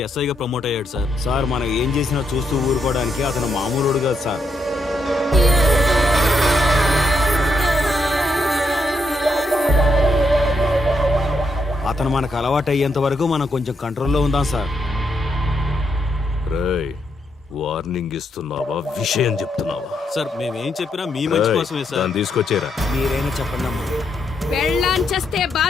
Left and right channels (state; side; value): normal; both; correlation 0.79